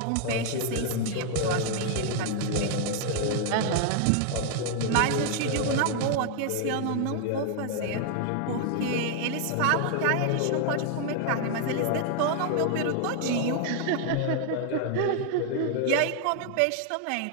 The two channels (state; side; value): different; both; correlation 0.00